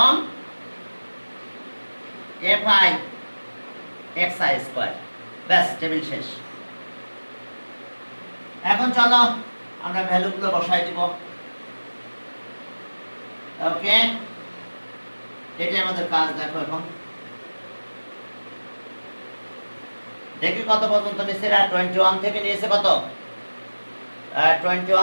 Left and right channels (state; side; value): inverted; both; correlation -1.00